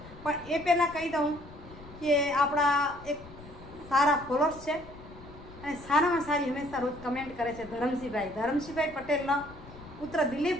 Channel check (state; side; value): noise; left; rumble, 17 dB below the sound